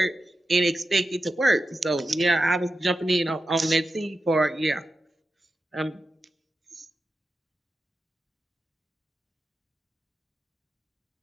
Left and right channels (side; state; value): both; normal; correlation 0.91